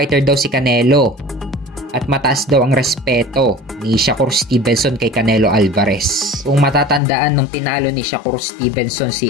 daw si Canelo. At mataas daw ang respeto ni Shakur Stevenson kay Canelo Alvarez. Kung matatandaan nung tinalo ni Shakur Stevenson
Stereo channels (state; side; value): drops out; right; at 7.0 s